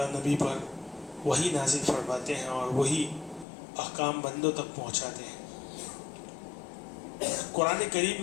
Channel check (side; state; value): right; drops out; at 3.5 s